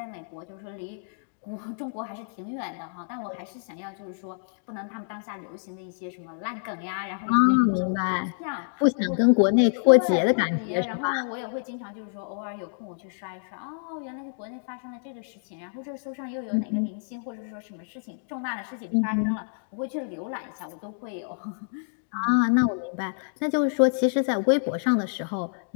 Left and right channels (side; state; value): right; silent; digital silence